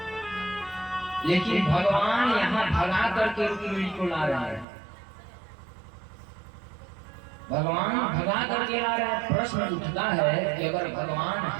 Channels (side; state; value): left; drops out; at 4.7 s